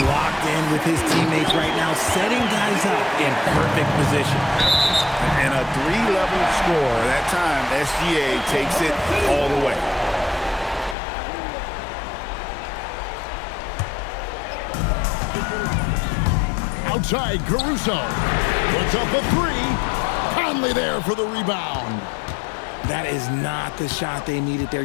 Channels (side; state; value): right; drops out; at 11.0 s